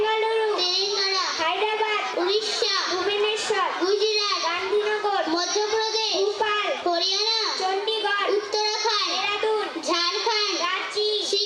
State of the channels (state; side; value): identical; both; correlation 1.00